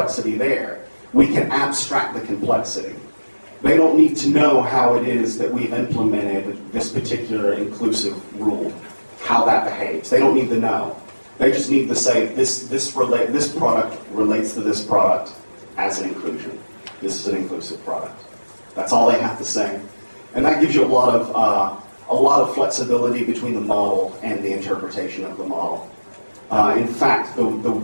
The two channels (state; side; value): inverted; both; correlation -1.00